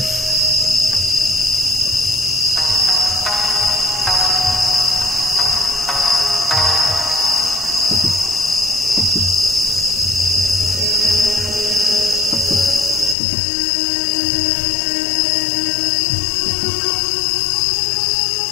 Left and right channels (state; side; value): drops out; right; at 13.2 s